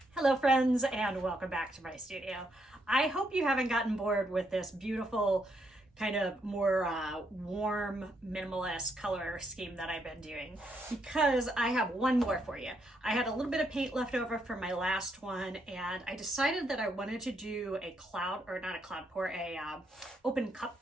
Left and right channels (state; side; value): normal; both; correlation 0.77